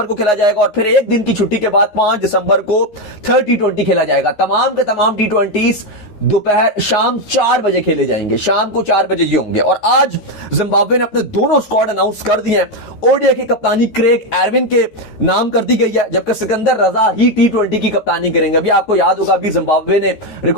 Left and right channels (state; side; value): late; right; 13 ms